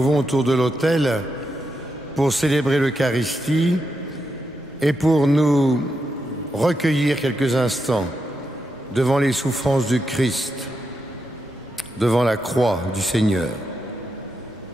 autour de l'autel pour célébrer l'Eucharistie et pour nous recueillir quelques instants devant les souffrances du Christ, devant la croix du Seigneur,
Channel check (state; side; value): normal; both; correlation 0.85